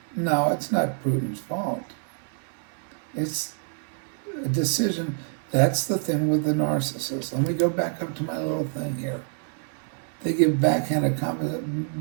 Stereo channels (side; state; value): left; silent; digital silence